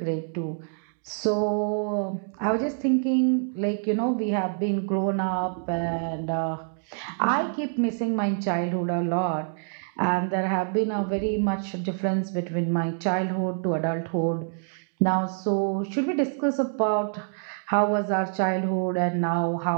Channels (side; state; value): left; silent; digital silence